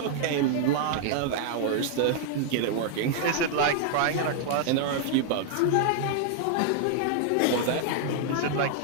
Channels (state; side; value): different; both; correlation -0.01